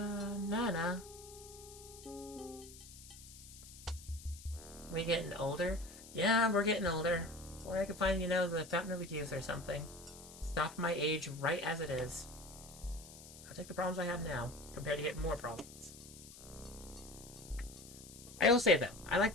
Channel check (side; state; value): left; noise; hiss, 17 dB below the sound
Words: We getting older? Yeah, we're getting older. Or I could find, the Fountain of Youth or something. Stop my age right as it is. I'll take the problems I have now, compared to getting more problems. I will say, though, I like